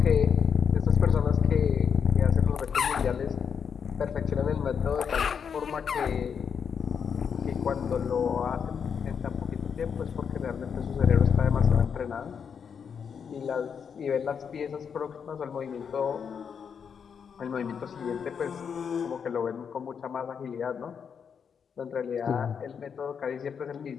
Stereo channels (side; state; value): right; quieter; 6.9 dB